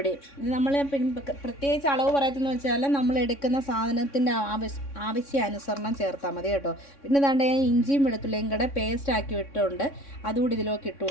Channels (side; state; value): right; late; 3.6 ms